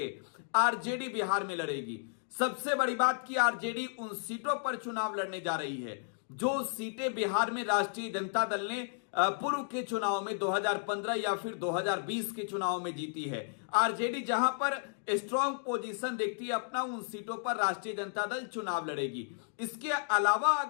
आरजेडी बिहार में लड़ेगी। सबसे बड़ी बात कि आरजेडी उन सीटों पर चुनाव लड़ने जा रही है जो सीटें बिहार में राष्ट्रीय जनता दल ने पूर्व के चुनाव में 2015 या फिर 2020 के चुनाव में जीती है। आरजेडी जहां पर स्ट्रांग पोजीशन देखती है अपना, उन सीटों पर राष्ट्रीय जनता दल चुनाव लड़ेगी। इसके अलावा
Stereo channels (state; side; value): silent; right; digital silence